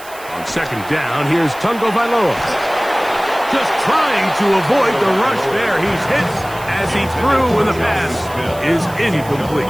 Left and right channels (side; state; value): right; noise; hiss, 19 dB below the sound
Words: On second down, here's Tungo Bailoa. Just trying to avoid the rush there. He's hit as he threw when the pass is incomplete.